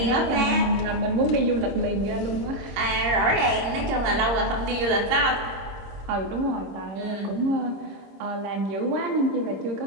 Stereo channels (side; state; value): left; late; 26 ms